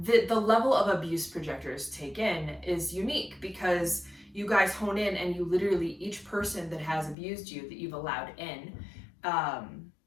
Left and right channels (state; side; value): drops out; right; at 7.2 s